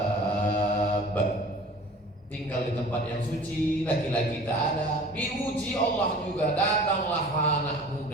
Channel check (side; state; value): both; normal; correlation 0.44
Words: Tinggal di tempat yang suci, laki-laki tak ada. Diuji Allah juga, datanglah anak